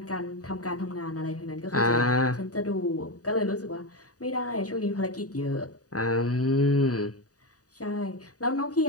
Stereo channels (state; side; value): late; right; 0.67 ms